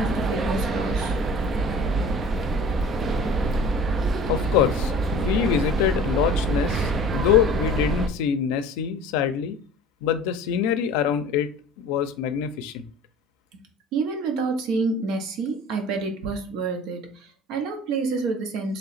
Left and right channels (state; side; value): normal; both; correlation 0.43